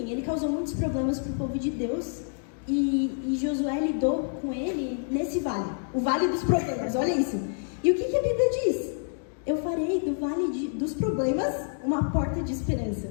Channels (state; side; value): silent; right; digital silence